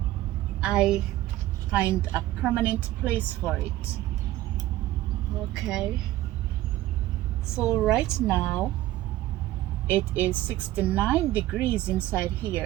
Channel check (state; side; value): quieter; left; 15.4 dB